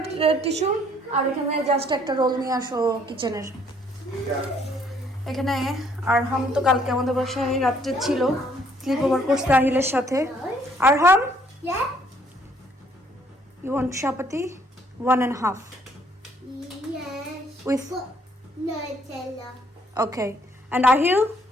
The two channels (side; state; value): both; normal; correlation 0.65